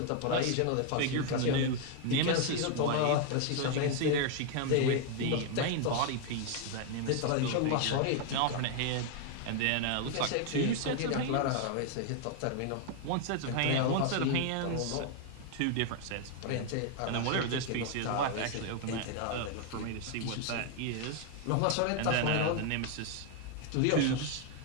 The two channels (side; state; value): both; different; correlation 0.00